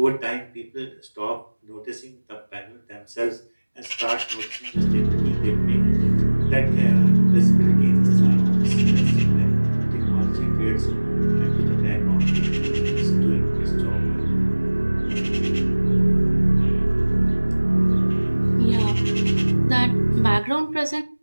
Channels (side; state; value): both; inverted; correlation -1.00